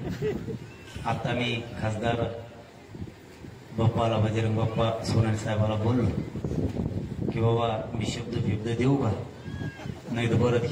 आता मी खासदार बाप्पाला, बजरंग बाप्पा सोनाली साहेबाला बोललो की बाबा मी शब्द देऊ का, नाही तर परत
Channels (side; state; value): both; identical; correlation 1.00